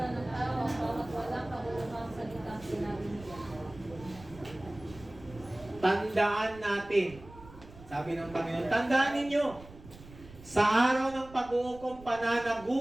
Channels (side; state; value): right; noise; rumble, 19 dB below the sound